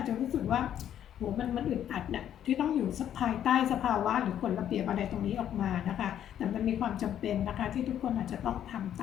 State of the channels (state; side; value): quieter; right; 10.3 dB